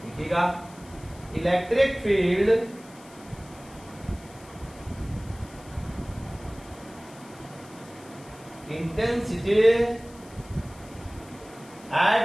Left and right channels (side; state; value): left; noise; hiss, 23 dB below the sound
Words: देखिएगा electric field intensity